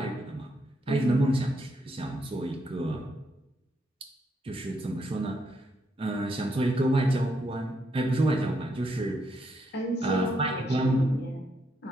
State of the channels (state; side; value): normal; both; correlation 0.77